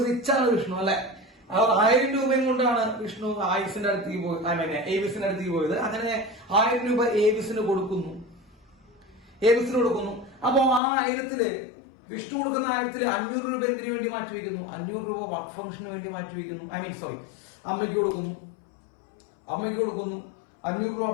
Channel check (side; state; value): right; drops out; at 10.8 s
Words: റിച്ചാണ് വിഷ്ണു അല്ലെ. 1000 രൂപയും കൊണ്ടാണ് വിഷ്ണു ആയുസിന്റെ അടുത്തേക്ക് പോയി, ഏവിസിന്റെ അടുത്തേക്ക് പോയത്. അങ്ങനെ 1000 രൂപ ഏവിസിന് കൊടുക്കുന്നു. അപ്പൊ ആ 1000-ല് വിഷ്ണു കൊടുക്കുന്ന 1000-ല് 500 രൂപ എന്തിനു വേണ്ടി മാറ്റിവെക്കുന്നു, 500 രൂപ വർക്ക് ഫംഗ്ഷന് വേണ്ടി മാറ്റിവെക്കുന്നു. അമ്മയ്ക്ക് കൊടുക്കുന്നു. 500 രൂപ